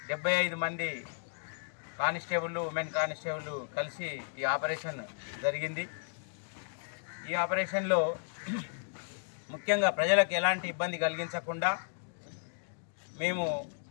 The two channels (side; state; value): right; silent; digital silence